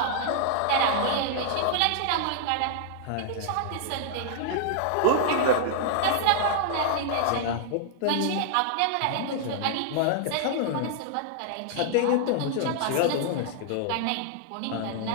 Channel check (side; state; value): both; different; correlation -0.01